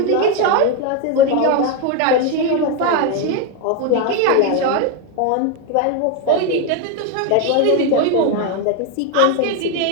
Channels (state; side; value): different; both; correlation 0.02